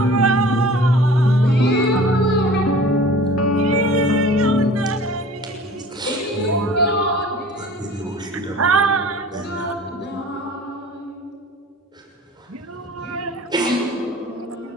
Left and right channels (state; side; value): normal; both; correlation 0.44